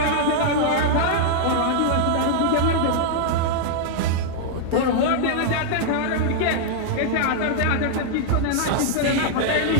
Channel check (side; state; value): both; different; correlation -0.01